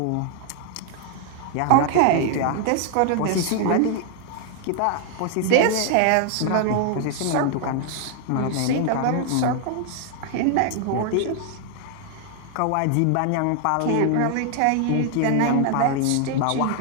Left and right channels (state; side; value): different; both; correlation 0.00